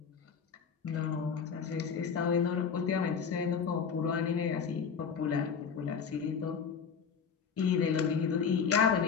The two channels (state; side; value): quieter; right; 6.4 dB